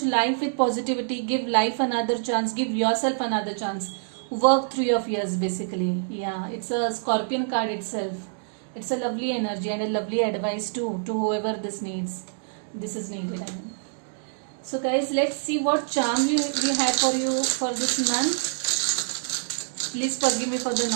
life with positivity. Give life another chance, give yourself another chance. Work through your fears, basically. Yeah, it's a Scorpion card itself. It's a lovely energy and a lovely advice too, to whoever this is needed, I mean. So guys, let's see what charm we have for you for this month. Please forgive me for the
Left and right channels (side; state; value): left; silent; digital silence